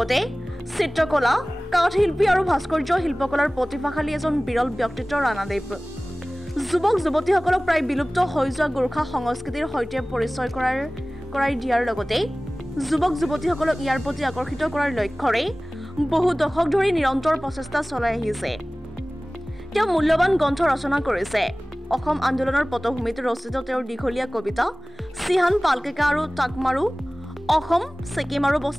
চিত্ৰকলা, কাঠশিল্পী আৰু ভাস্কৰ্য শিল্পকলাৰ প্ৰতিভাশালী এজন বিৰল ব্যক্তিত্ব ৰাণাদেৱ। যুৱক যুৱতীসকলক প্ৰায় বিলুপ্ত হৈ যোৱা গোৰ্খা সংস্কৃতিৰ সৈতে পৰিচয় কৰাই দিয়াৰ লগতে যুৱক যুৱতীসকলক ইয়াৰ প্ৰতি আকৰ্ষিত কৰাৰ লক্ষ্যৰে বহু দশক ধৰি নিৰন্তৰ প্ৰচেষ্টা চলাই আহিছে। তেওঁ মূল্যৱান গ্ৰন্থ ৰচনা কৰিছে। অসম আন্দোলনৰ পটভূমিত ৰচিত তেওঁৰ দীঘলীয়া কবিতা চিহান পালকেকা আৰু টাকমাৰু অসম, ছিকিম আৰু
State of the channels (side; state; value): both; normal; correlation 0.98